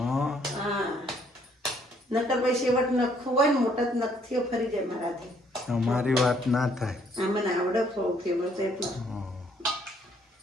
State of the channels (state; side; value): normal; both; correlation 0.66